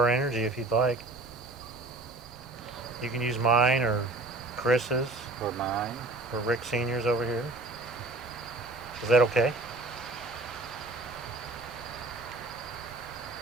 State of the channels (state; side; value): quieter; left; 3.1 dB